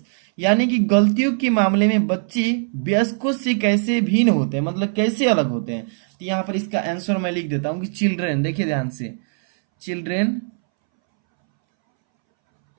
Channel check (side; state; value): left; silent; 64 dB below the other